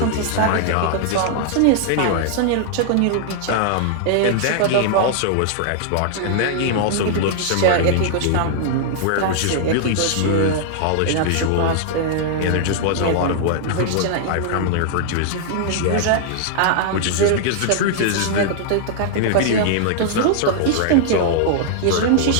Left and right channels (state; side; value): different; both; correlation -0.01